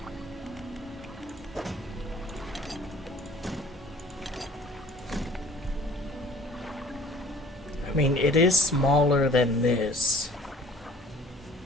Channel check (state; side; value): normal; both; correlation 0.52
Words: I mean, it is smaller than this.